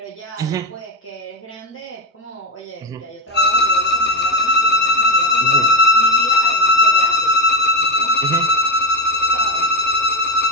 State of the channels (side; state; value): both; normal; correlation 0.13